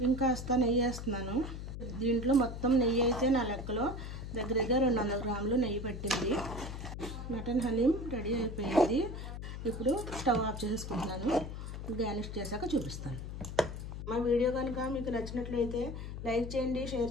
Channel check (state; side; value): noise; left; hum, 7 dB below the sound